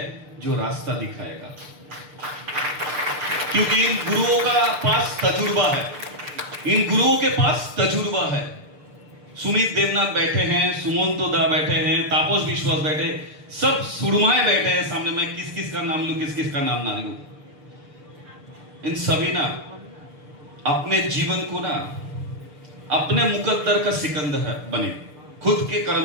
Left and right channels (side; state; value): left; late; 6.7 ms